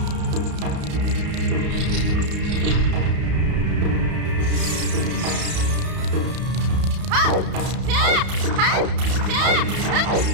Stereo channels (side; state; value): left; late; 32 ms